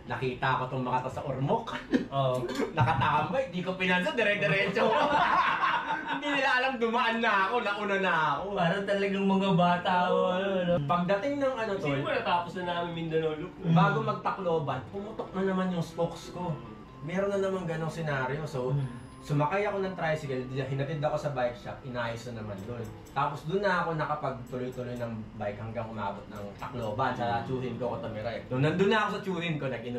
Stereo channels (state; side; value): identical; both; correlation 1.00